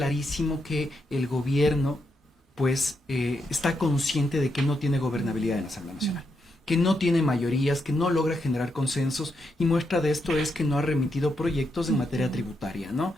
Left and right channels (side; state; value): both; normal; correlation 0.82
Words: que el gobierno pues está consciente de que no tiene gobernabilidad en la Asamblea Nacional, que no tiene mayorías, que no logra generar consensos, y muestra de esto es que no ha remitido proyectos en materia tributaria, ¿no?